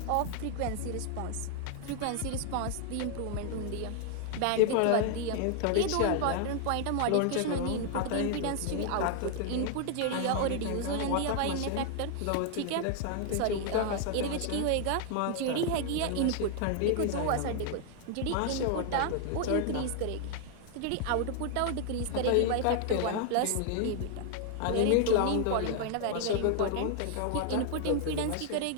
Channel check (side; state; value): both; different; correlation 0.00